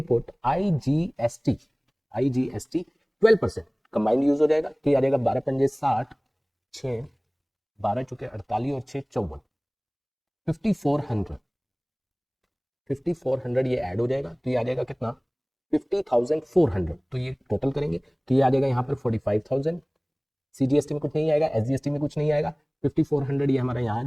आईजीएसटी 12% कंबाइंड यूज हो जाएगा। तो ये आ जाएगा 12 पंजे 60, 6 12 चुके 48 और 6 54, 5400 ये ऐड हो जाएगा। तो ये आ जाएगा कितना, 50,400। तो ये टोटल करेंगे तो ये आ जाएगा यहाँ पर 45,000। सीजीएसटी में कुछ नहीं आएगा, एसजीएसटी में कुछ नहीं आएगा, 5400 ये हमारा यहाँ आ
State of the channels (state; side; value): identical; both; correlation 1.00